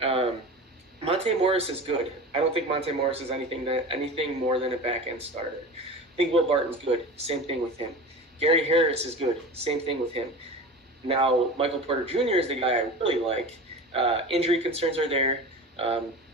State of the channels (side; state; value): both; normal; correlation 0.32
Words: Monte Morris is good. I don't think Monte Morris is anything more than a back-end starter. I think Will Barton's good. Same thing with him. Gary Harris is good. Same thing with him. Now, Michael Porter Jr. is the guy I really like. Injury concerns are there,